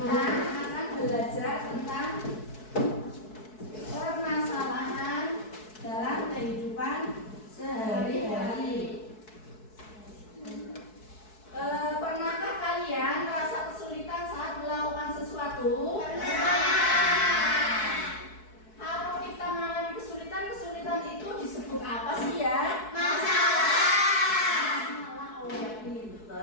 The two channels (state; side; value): late; right; 4.6 ms